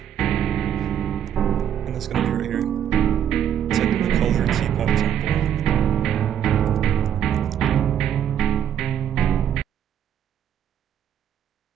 and it's gonna be right here. It's like the color Teapot Temple.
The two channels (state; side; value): quieter; left; 9.6 dB